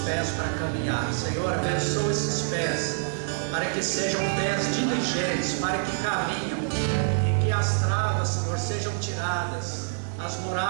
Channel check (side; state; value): left; silent; digital silence